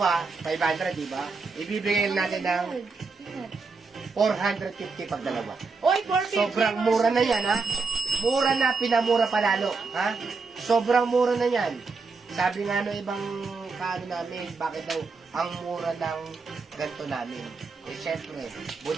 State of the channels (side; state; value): left; quieter; 4.4 dB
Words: 500, di ba? Ibibigay natin ng 450 pag dalawa. Oy, 450. Sobrang mura na yan, ha? Mura na, pinamura palalo, ha? Sobrang mura na yan. Sabi nga no ibang kaano namin, bakit daw ang mura ng ganito namin? Eh, syempre,